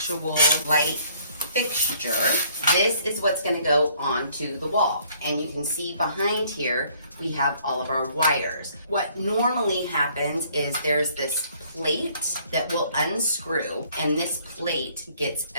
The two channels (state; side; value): inverted; both; correlation -0.61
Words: light fixture. This is what's gonna go onto the wall. And you can see behind here, we have all of our wires. What normally happens is there's this plate that will unscrew and this plate gets